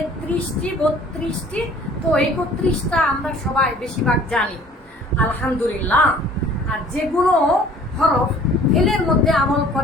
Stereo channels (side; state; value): both; normal; correlation 0.52